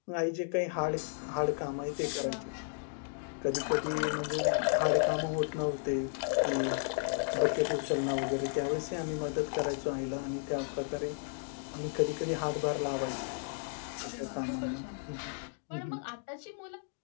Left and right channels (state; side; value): silent; right; digital silence